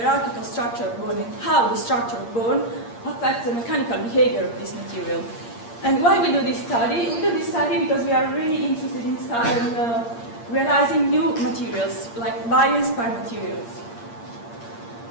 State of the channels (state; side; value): late; right; 8.6 ms